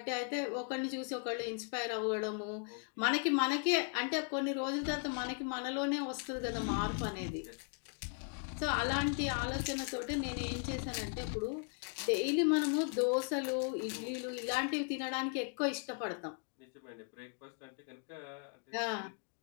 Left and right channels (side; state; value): right; quieter; 39.5 dB